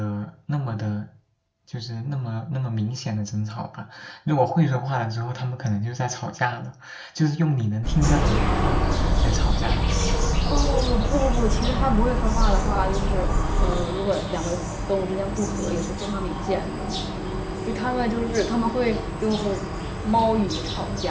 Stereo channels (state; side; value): identical; both; correlation 1.00